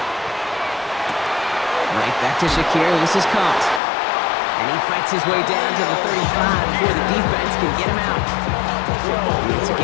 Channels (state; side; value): drops out; right; at 3.8 s